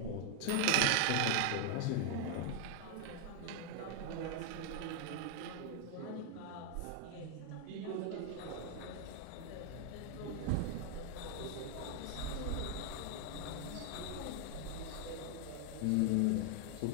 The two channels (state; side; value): different; both; correlation 0.00